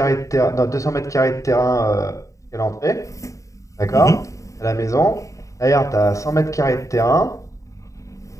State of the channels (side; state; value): right; late; 0.16 ms